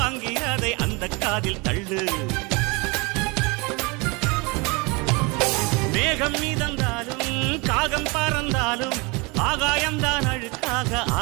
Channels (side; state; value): left; quieter; 27.9 dB